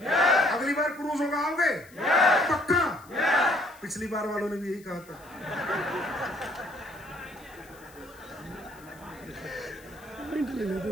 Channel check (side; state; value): left; noise; hiss, 25 dB below the sound